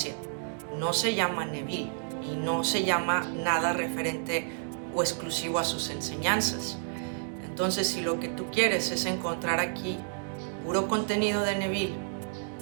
no se llama Neville y no se llama nada referente o exclusivo a sus enseñanzas. Entonces, si lo que tú quieres es encontrar aquí puro contenido de Neville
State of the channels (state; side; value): silent; left; digital silence